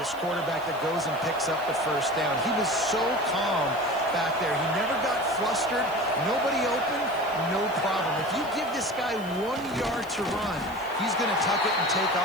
quarterback that goes and picks up the first down. He was so calm back there. He never got flustered. Nobody open, no problem. If you give this guy 1 yard to run, he's going to tuck it and take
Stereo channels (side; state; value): right; noise; hiss, 22 dB below the sound